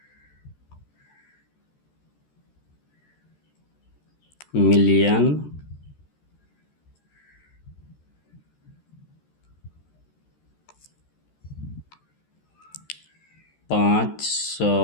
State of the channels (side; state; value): right; late; 13 ms